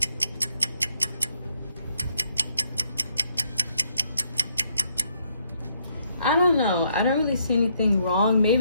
I don't know, I don't really see anything wrong.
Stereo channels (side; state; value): both; inverted; correlation -0.72